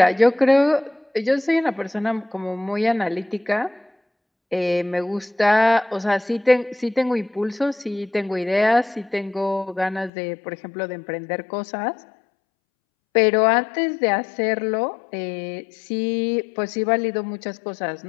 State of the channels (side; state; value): right; drops out; at 10.1 s